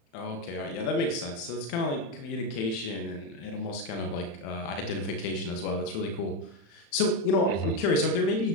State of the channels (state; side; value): late; right; 35 ms